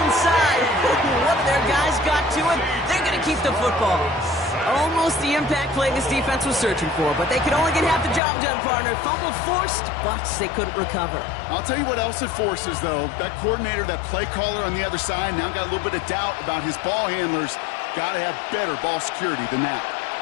side. One of their guys got to it. They're going to keep the football. Almost the impact play this defense was searching for, but they could only get half the job done, partner. Fumble forced, but they couldn't recover. I'll tell you what else it forces, though. That coordinator, that play caller on the other side, now got a little bit of doubt about his ball handlers. Got to have better ball security than that.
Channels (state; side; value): drops out; right; at 8.2 s